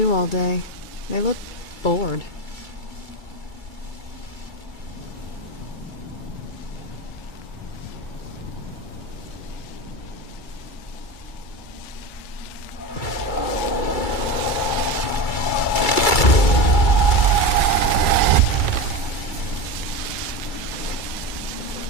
all day. They look bored.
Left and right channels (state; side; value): late; right; 2.3 ms